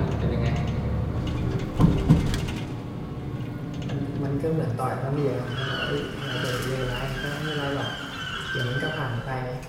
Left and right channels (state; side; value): identical; both; correlation 1.00